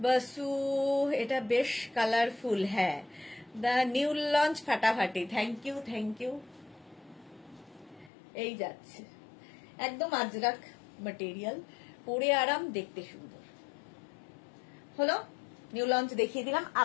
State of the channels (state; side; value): drops out; right; at 8.1 s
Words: বসু, এটা বেশ কালারফুল। হ্যাঁ, দ্য নিউ লঞ্চ ফাটাফাটি, থ্যাংক ইউ থ্যাংক ইউ। এই যাচ্ছে একদম আজরাক ম্যাটেরিয়াল, পরে আরাম, দেখতে সুন্দর। হলো, নিউ লঞ্চ দেখিয়ে দিলাম।